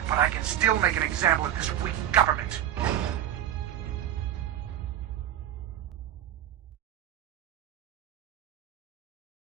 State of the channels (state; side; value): quieter; left; 11.2 dB